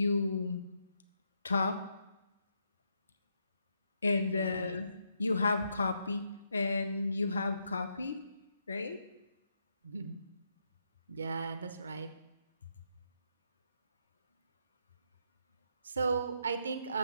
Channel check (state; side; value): inverted; both; correlation -0.78